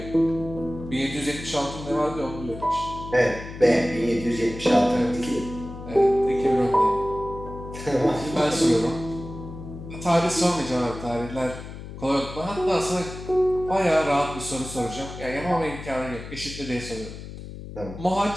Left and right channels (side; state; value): left; noise; hum, 11 dB below the sound